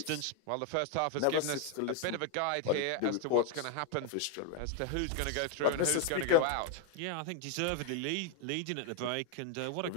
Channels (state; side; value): different; both; correlation 0.00